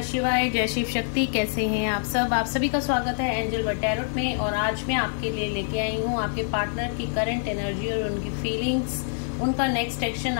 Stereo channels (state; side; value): silent; right; digital silence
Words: शिवाय, जय शिव शक्ति। कैसे हैं आप सब? आप सभी का स्वागत है एंजल वर्ल्ड टैरोट में। और आज मैं आपके लिए लेके आई हूँ आपके पार्टनर की करंट एनर्जी और उनकी फीलिंग्स, उनका नेक्स्ट एक्शन